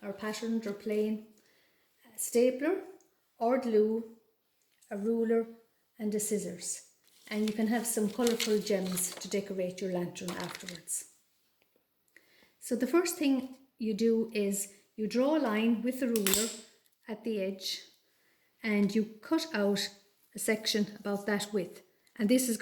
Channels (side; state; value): both; identical; correlation 1.00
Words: or patterned or plain, a stapler or glue, a ruler and a scissors. And you can have some colourful gems to decorate your lantern afterwards. So the first thing you do is you draw a line with the ruler at the edge and you cut out a section about that width, and this is